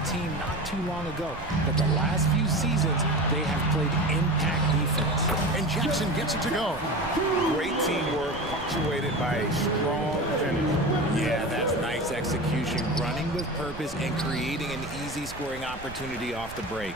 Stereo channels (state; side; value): noise; right; rumble, 15 dB below the sound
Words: team not too long ago. But the last few seasons, they have played impact defense. And Jackson gets it to go. Great teamwork, punctuated by a strong finish. Yeah, that's nice execution, running with purpose and creating an easy scoring opportunity off the break.